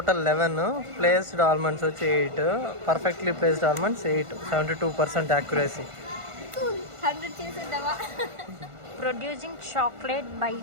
11, placed almonds వచ్చి 8, perfectly placed almonds 8, 72% accuracy. Producing chocolate by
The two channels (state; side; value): late; left; 1.5 ms